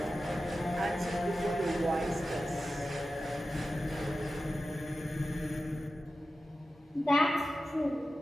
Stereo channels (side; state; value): both; normal; correlation 0.93